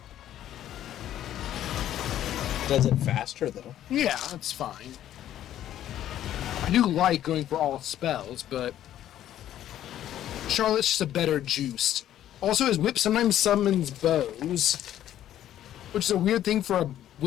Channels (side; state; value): right; quieter; 11.9 dB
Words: Does it faster though? Yeah, that's fine. I do like going for all spells, but Charlotte's just a better juiced. Also, his whip sometimes summons bows, which is a weird thing for a